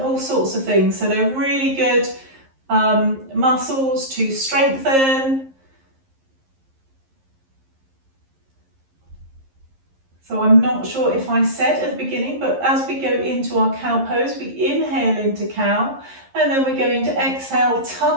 sorts of things. So they're really good muscles to strengthen. So I'm not sure if I said at the beginning, but as we go into our cow pose, we inhale into cow, and then we're going to exhale,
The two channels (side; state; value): left; late; 11 ms